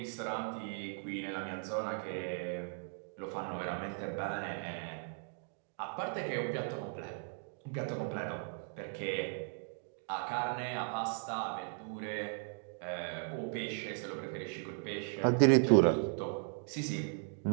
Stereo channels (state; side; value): silent; left; 53 dB below the other